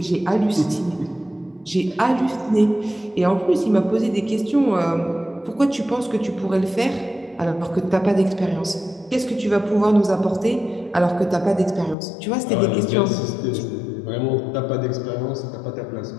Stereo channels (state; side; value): drops out; right; at 12.0 s